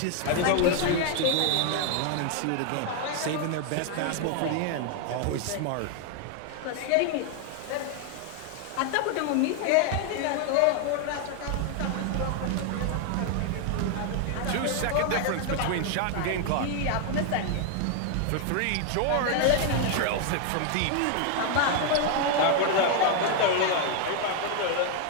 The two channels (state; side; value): different; both; correlation 0.00